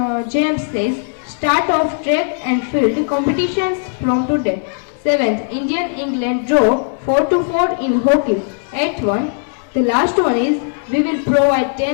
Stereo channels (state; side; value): silent; right; digital silence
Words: James says start of track and field competitions from today. Seventh, England draw 4-4 in hockey. Eighth one, the last one is we will provide